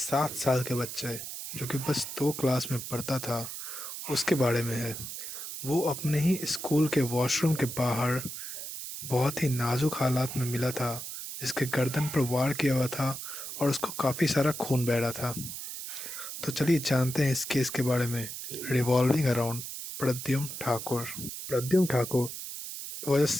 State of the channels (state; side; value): noise; right; hiss, 8 dB below the sound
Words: साल के बच्चे जो कि बस 2 क्लास में पढ़ता था उसके बारे में है। वो अपने ही स्कूल के वॉशरूम के बाहर बहुत ही नाजुक हालात में मिला था, जिसके गर्दन पर वार किया हुआ था और उसको काफ़ी सारा खून बह रहा था। तो चलिए जानते हैं इस केस के बारे में। Revolving around Pradyumna Thakur. Pradyumna Thakur was a